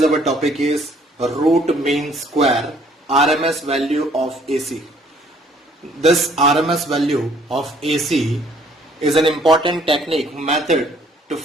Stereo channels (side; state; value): both; normal; correlation 0.61